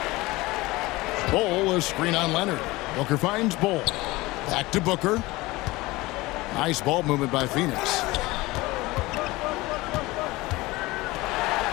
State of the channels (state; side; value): quieter; right; 20.6 dB